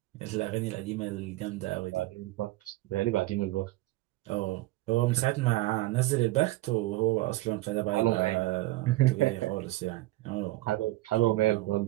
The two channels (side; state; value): left; quieter; 18.8 dB